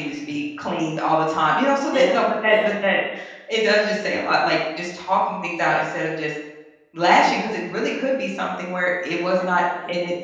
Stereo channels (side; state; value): both; identical; correlation 1.00